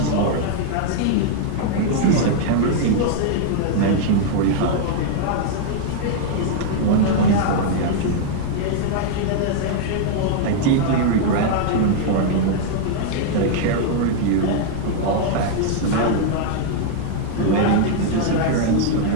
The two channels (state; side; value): different; both; correlation -0.01